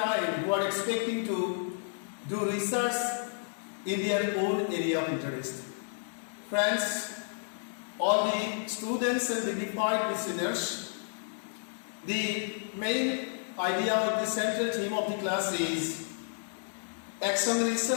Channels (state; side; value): silent; right; digital silence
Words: who are expecting to do research in their own area of interest. Friends, all the students and dignified listeners, the main idea of the central theme of the class is action